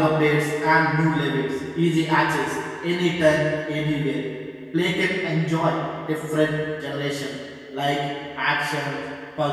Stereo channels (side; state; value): both; identical; correlation 1.00